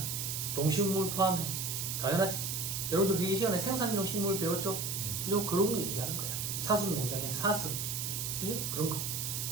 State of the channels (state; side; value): noise; right; hiss, 2 dB below the sound